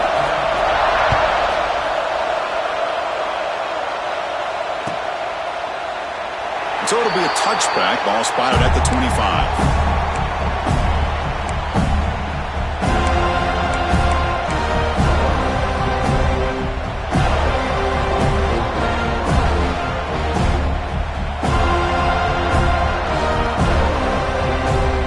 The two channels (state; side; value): identical; both; correlation 1.00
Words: So it'll be a touchback. Ball spotted at the 25.